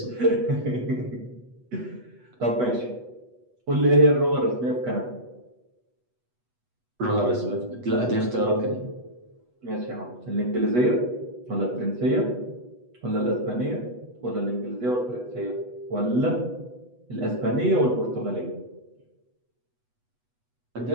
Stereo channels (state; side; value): late; left; 8.2 ms